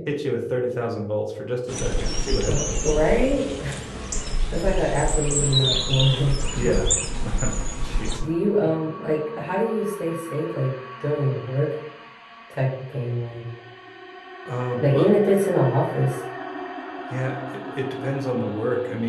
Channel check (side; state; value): both; identical; correlation 1.00